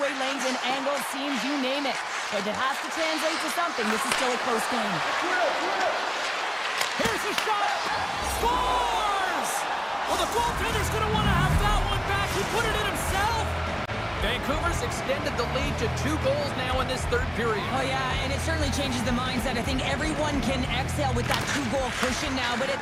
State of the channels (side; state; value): both; identical; correlation 1.00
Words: lanes and angles, seams, you name it. But it has to translate to something. This is still a close game. Here's a shot. Scores! Well, the goaltender's going to want to have that one back. He put it in himself. Vancouver's extended the lead to 2 goals now in this third period. Oh, yeah, and it certainly changes the mindset. I think everyone can exhale with that 2-goal cushion now, but